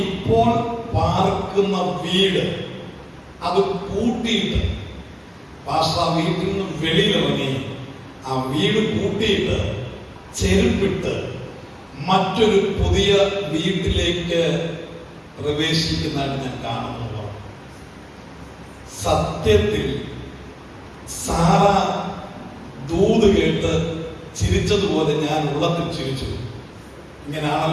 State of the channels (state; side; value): identical; both; correlation 1.00